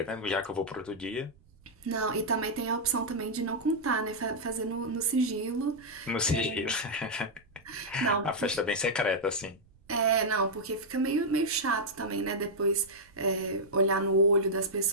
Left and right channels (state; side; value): noise; right; rumble, 29 dB below the sound